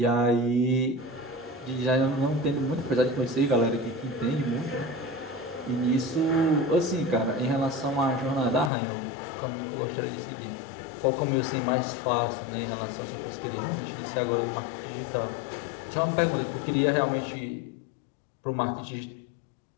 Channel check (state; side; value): drops out; right; at 8.7 s